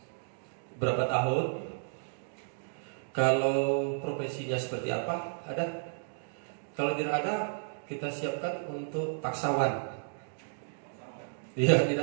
berapa tahun? Kalau profesinya seperti apa? Ada? Kalau tidak ada, kita siapkan untuk paksawan. Iya,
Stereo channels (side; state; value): left; silent; digital silence